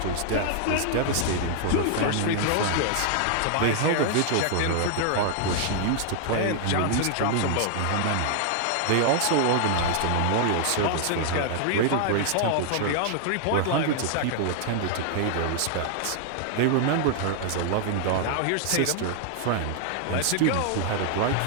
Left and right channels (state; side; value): different; both; correlation 0.00